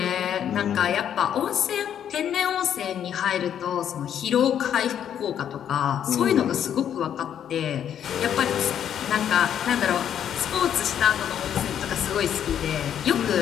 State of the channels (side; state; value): right; quieter; 9.5 dB